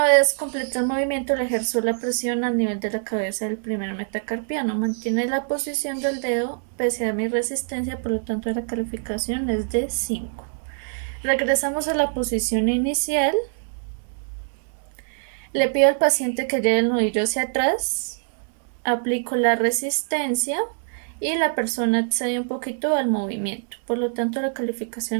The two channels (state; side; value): silent; left; digital silence